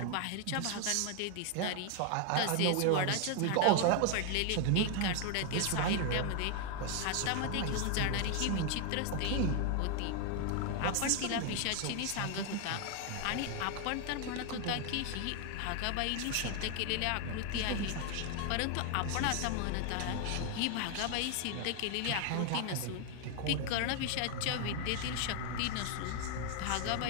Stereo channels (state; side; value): different; both; correlation 0.01